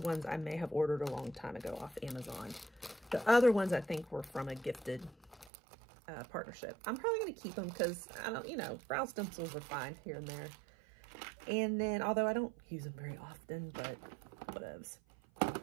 I may have ordered a long time ago off Amazon. The other ones I think were from a gifted partnership. I'm probably going to keep them because I don't, you know, brow stencils are fine here and there. And then, although I don't use them very often, but whatevs.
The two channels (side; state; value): left; drops out; at 5.5 s